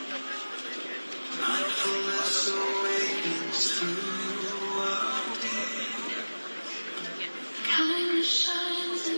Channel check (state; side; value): inverted; both; correlation -1.00